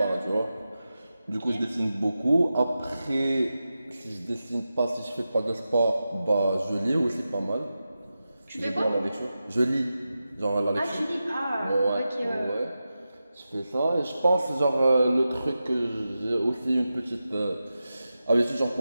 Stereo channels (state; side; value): inverted; both; correlation -0.92